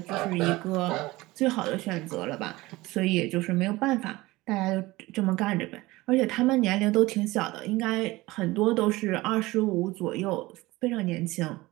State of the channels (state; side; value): quieter; left; 20.0 dB